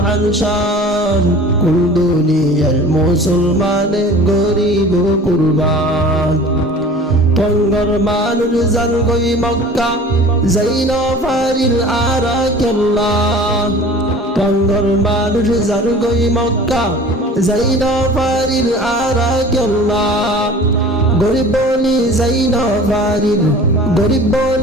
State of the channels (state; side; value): normal; both; correlation 0.43